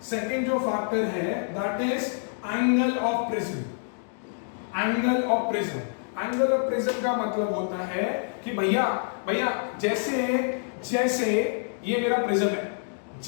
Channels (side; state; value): right; silent; digital silence